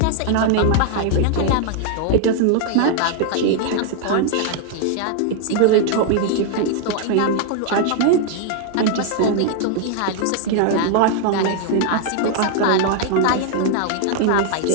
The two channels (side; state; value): both; different; correlation 0.00